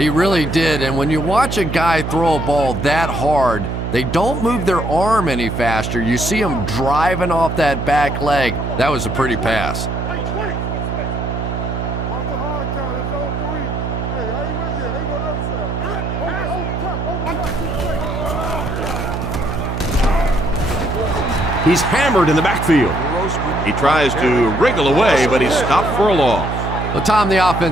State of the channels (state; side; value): noise; right; hum, 4 dB below the sound